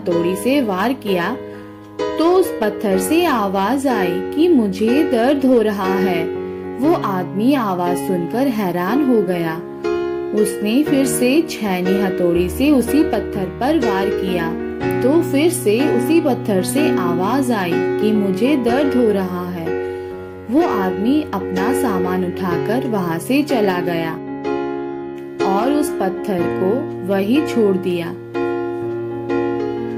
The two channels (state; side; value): identical; both; correlation 1.00